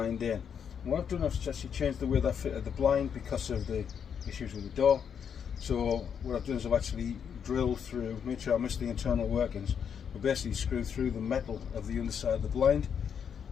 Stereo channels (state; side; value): quieter; right; 7.6 dB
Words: in. And what I've done is actually changed the way that fitted the blind because of the issues with the door. So what I've done is I've actually drilled through, made sure I missed the internal workings, but basically screwed through the metal of the underside of the blind,